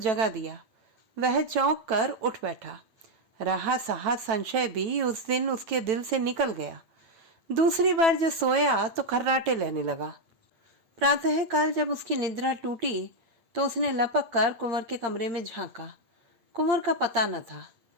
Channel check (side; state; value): left; late; 9.1 ms